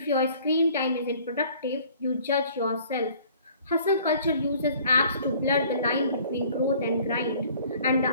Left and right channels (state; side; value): inverted; both; correlation -0.54